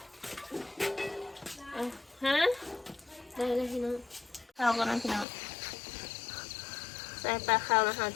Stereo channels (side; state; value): right; drops out; at 5.2 s